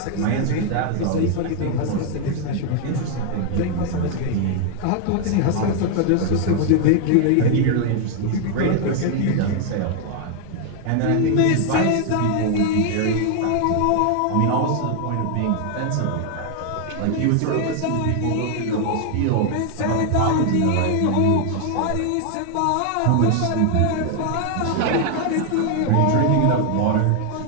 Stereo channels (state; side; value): different; both; correlation 0.00